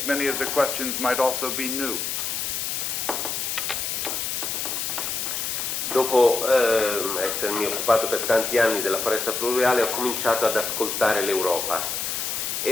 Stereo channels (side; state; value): left; noise; hiss, 2 dB below the sound